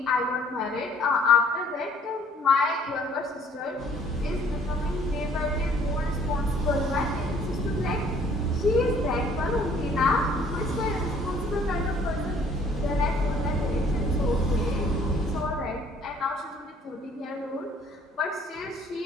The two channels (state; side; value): normal; both; correlation 0.58